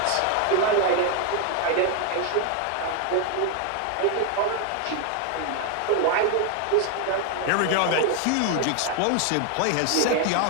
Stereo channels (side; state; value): both; different; correlation 0.01